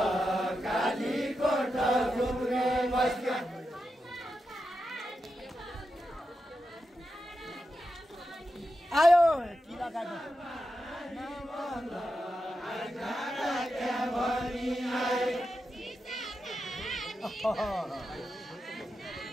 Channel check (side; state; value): both; normal; correlation 0.89